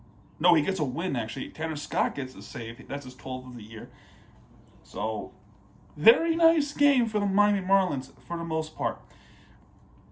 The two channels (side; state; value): both; identical; correlation 1.00